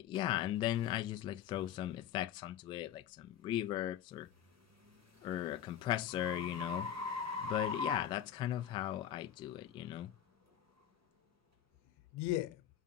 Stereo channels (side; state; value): right; quieter; 10.4 dB